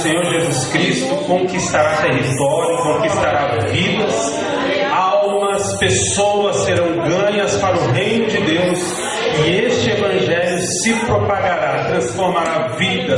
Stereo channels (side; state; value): both; identical; correlation 1.00